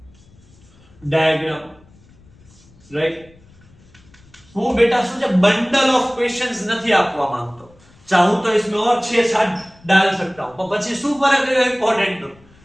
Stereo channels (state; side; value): noise; left; rumble, 27 dB below the sound